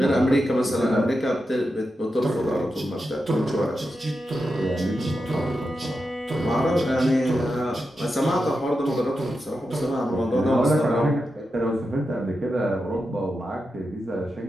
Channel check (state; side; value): normal; both; correlation 0.89